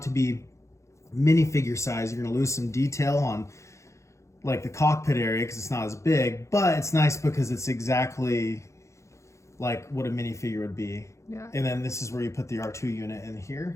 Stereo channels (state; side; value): late; right; 0.14 ms